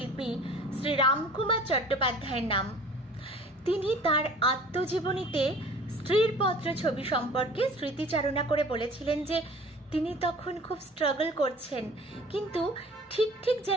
শ্রী রামকুমার চট্টোপাধ্যায়ের নাম। তিনি তার আত্মজীবনীতে স্থিরপত্র ছবি সম্পর্কে স্মৃতিচারণা করে বলেছিলেন যে তিনি তখন খুব স্ট্রাগল করছেন, কিন্তু ঠিক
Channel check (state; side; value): normal; both; correlation 0.47